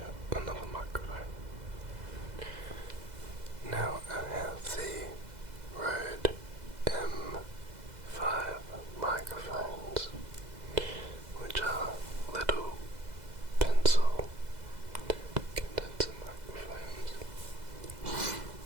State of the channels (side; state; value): left; late; 2.0 ms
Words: another microphone. Now I have the Rode M5 microphones, which are little pencil condenser microphones